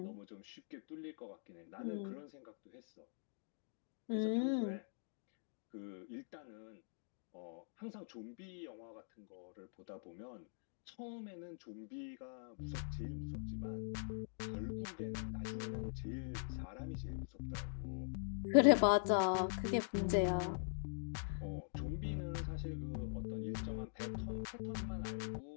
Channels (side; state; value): right; silent; digital silence